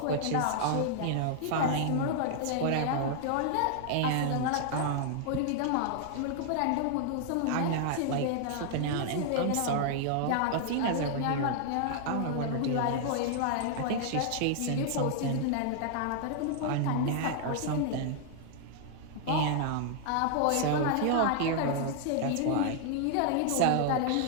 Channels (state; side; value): different; both; correlation 0.00